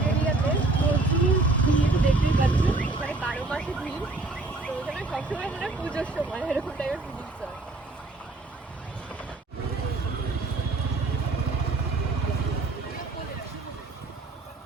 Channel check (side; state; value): left; quieter; 3.2 dB